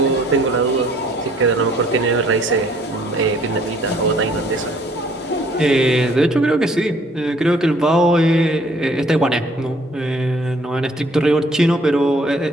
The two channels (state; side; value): normal; both; correlation 0.60